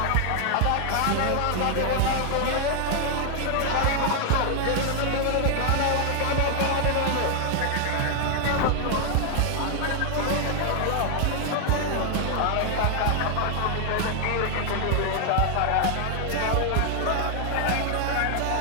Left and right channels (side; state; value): both; different; correlation 0.00